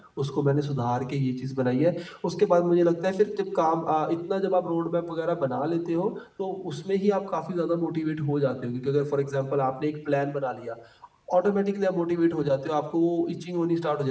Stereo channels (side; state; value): both; identical; correlation 1.00